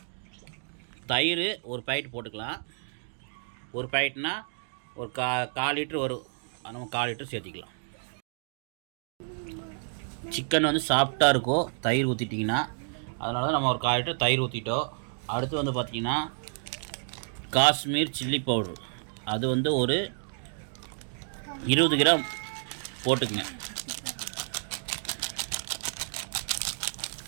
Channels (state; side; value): silent; left; digital silence